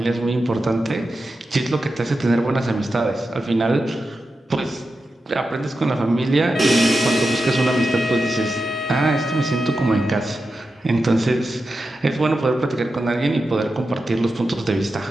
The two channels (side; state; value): both; normal; correlation 0.90